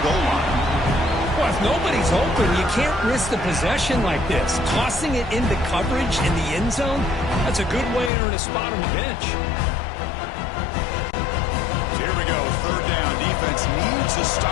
goal line. Well, if nobody's open, you can't risk the possession like this. Tossing it into coverage in the end zone, that's a good way to earn a spot on the bench. Here we go, third down. Defense needs a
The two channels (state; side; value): drops out; right; at 8.1 s